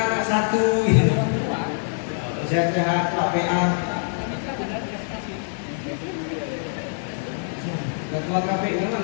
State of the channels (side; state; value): right; silent; digital silence